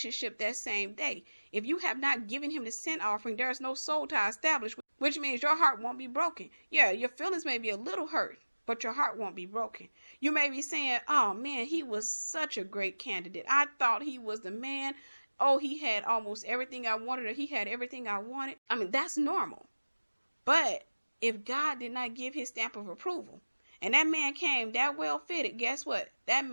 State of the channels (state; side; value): inverted; both; correlation -1.00